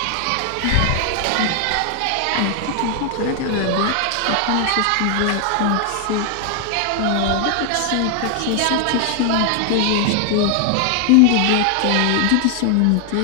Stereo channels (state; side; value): different; both; correlation 0.00